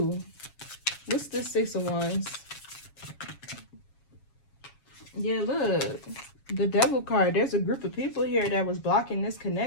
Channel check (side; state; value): right; late; 7.2 ms